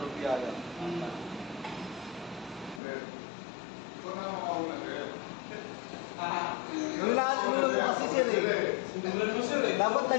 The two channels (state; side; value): drops out; right; at 2.8 s